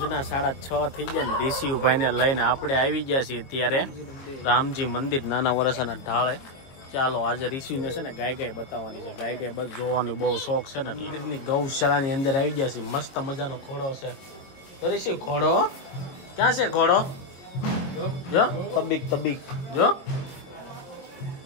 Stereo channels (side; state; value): right; late; 22 ms